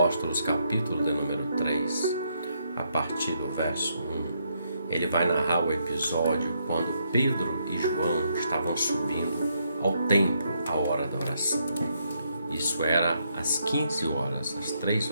capítulo de número 3, a partir do verso 1, ele vai narrar o episódio quando Pedro e João estavam subindo ao templo à hora da oração. Isso era às 15 horas, às 3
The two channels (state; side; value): inverted; both; correlation -0.76